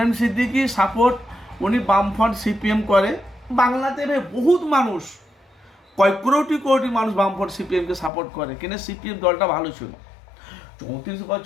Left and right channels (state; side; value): drops out; right; at 8.1 s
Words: সিদ্দিকী সাপোর্ট, উনি বামফ্রন্ট সিপিএম করে বাংলাতে, বহুত মানুষ, কয়েক কোটি মানুষ বামফ্রন্ট সিপিএমকে সাপোর্ট করে, কিন্তু সিপিএম দলটা ভালো ছিল, 34